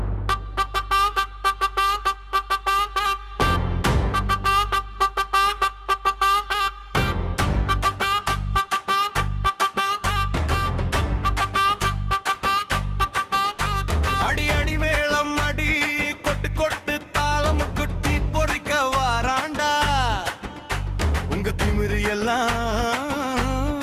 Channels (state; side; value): identical; both; correlation 1.00